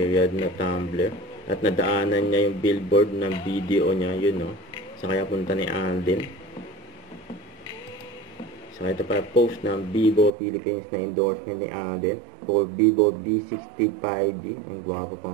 na tumbler. At nadaanan niya yung billboard ng video niya. Yun, no? Sa kaya punta ni Alden. Saka ito para post ng Vivo Philippines na endorsement ni Alden for Vivo V60 5G. Ang gwapo pa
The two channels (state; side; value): drops out; left; at 10.3 s